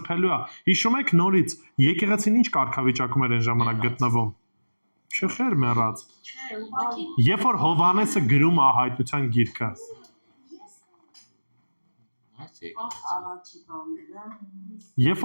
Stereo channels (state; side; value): inverted; both; correlation -1.00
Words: է։ Հիշում եք նորից եկեղեցին ինչ կարգավիճակում էր այն ժամանակ գտնվում։ Չխեր մեռած։ Երբ որ Հովհաննեսը գրում է հայտնության գիրքը, երբ